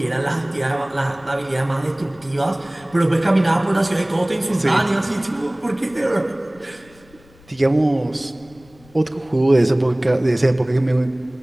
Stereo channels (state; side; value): noise; left; rumble, 27 dB below the sound